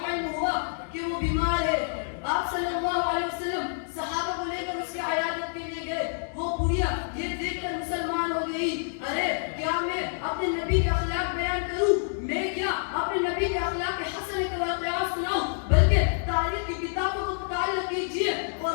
علم ہوا کہ وہ بیمار ہے۔ آپ صلی اللہ علیہ وسلم صحابہ کو لے کر اس کی عیادت کے لیے گئے۔ وہ بڑھیا یہ دیکھ کر مسلمان ہو گئی: ارے کیا میں اپنے نبی کے اخلاق بیان کروں؟ میں کیا اپنے نبی کے اخلاق حسن کے واقعات سناؤں؟ بلکہ تاریخ کی کتابوں کو مطالعہ کیجیے،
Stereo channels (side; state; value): right; silent; digital silence